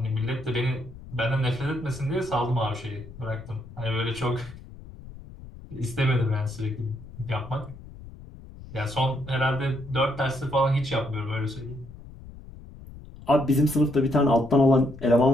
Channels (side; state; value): left; noise; rumble, 16 dB below the sound